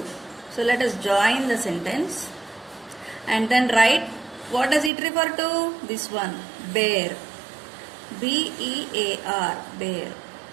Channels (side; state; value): left; drops out; at 4.9 s